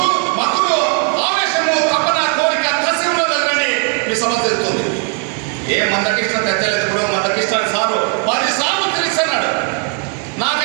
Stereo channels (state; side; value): quieter; left; 39.2 dB